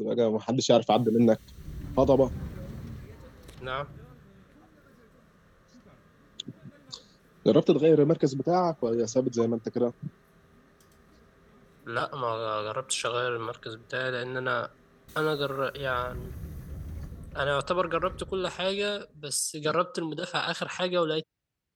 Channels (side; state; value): both; identical; correlation 1.00